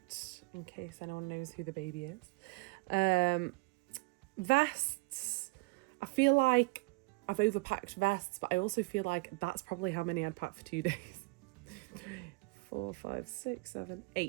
in case anyone knows who the baby is. Vests, I feel like I've overpacked vests, but I also feel like that's probably how many I'd pack for 2 days. 3, 4, 5, 6, 7,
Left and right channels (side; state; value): left; quieter; 25.9 dB